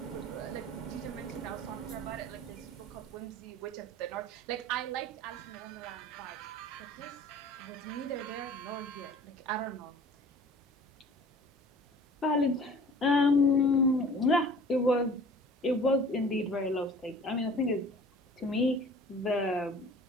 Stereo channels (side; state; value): both; normal; correlation 0.46